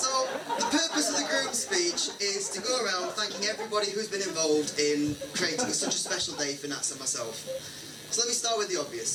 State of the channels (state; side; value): identical; both; correlation 1.00